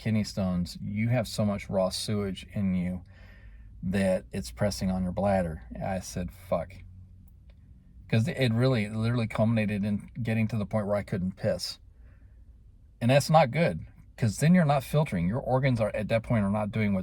stones. You have so much raw sewage in you that it's pressing on your bladder. I said, fuck. Because it literally culminated in getting to the point where I couldn't piss. And that's not good, because then you're not filtering. Your organs are at that point are not doing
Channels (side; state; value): both; identical; correlation 1.00